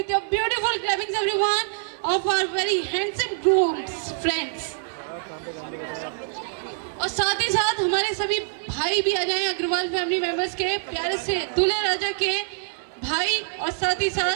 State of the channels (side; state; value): left; silent; 62 dB below the other